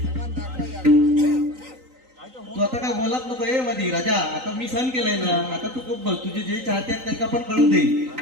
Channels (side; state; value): left; late; 3.9 ms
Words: तू आता काय बोलत नको ए मधी राजा. आता मी सहन केलंय ना. आता तू खूप बोल. तुझे जे चाहते आहेत त्यांना पण कळू दे.